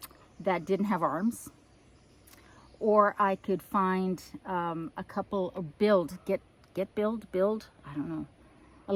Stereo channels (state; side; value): identical; both; correlation 1.00